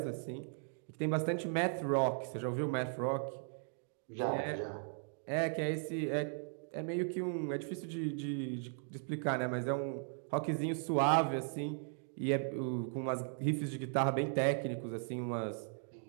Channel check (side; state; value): left; silent; 53 dB below the other